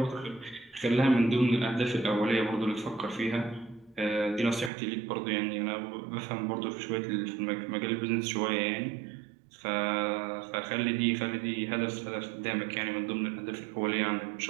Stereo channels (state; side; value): drops out; left; at 4.7 s